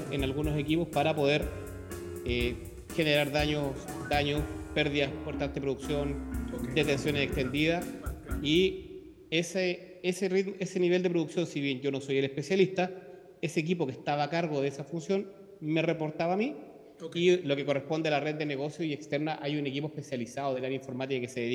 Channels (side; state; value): both; identical; correlation 1.00